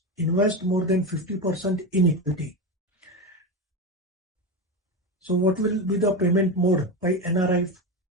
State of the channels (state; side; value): normal; both; correlation 0.18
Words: invest more than 50% in equity. So what will be the payment mode by NRI